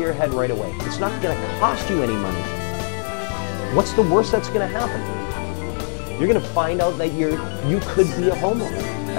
your head right away. It's not going to cost you any money. What's the worst that's going to happen? You're going to find out that you could be a homeowner.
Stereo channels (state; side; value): silent; right; digital silence